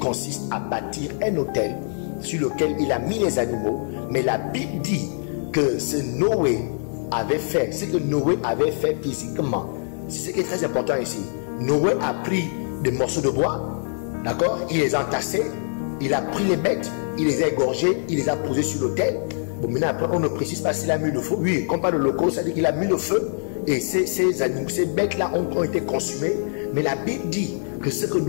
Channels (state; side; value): silent; right; 61 dB below the other